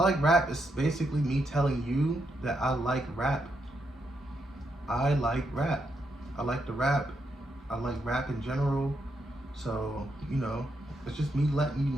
like rap is basically me telling you that I like rap. I like rap. I like the rap. I like rap in general. So, it's just me letting you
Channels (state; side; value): normal; both; correlation 0.80